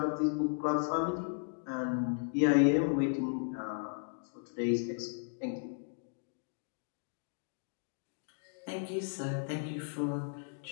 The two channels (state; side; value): silent; right; digital silence